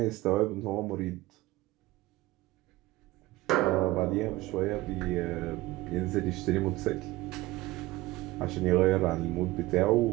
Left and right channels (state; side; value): quieter; left; 18.5 dB